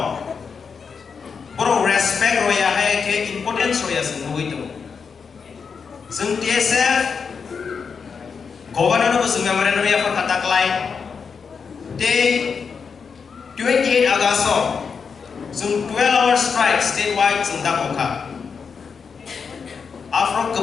boro respect roya hai ke importance roya sungno itu sung TSF governor of memorandum ya for katak lai day 28 August sung 12-hour strike statewide sung dakokha After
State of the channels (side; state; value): right; quieter; 5.8 dB